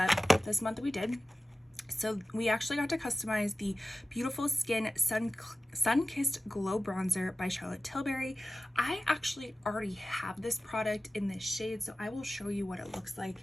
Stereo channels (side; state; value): both; normal; correlation 0.95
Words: this month we did. So we actually got to customize the Beautiful Skin Sun-Kissed Glow Bronzer by Charlotte Tilbury. I actually already have this product in this shade, so I will show you what it looks